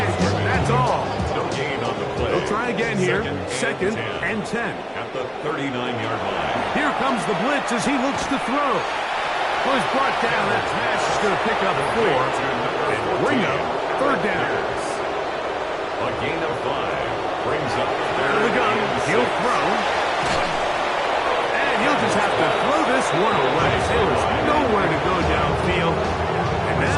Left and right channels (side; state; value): both; identical; correlation 1.00